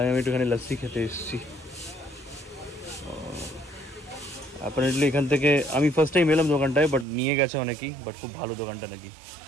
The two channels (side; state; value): left; drops out; at 7.1 s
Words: একটুখানি লাস্সি খেতে এসেছি। অ্যাপারেন্টলি এখান থেকে আমি ফার্স্ট টাইম এলাম দোকানটায়, বাট নিয়ে গেছে অনেকেই, বাট খুব ভালো দোকানটা নাকি,